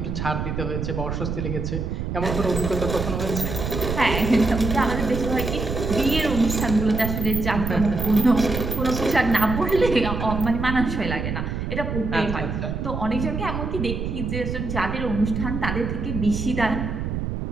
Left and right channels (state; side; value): noise; right; rumble, 3 dB below the sound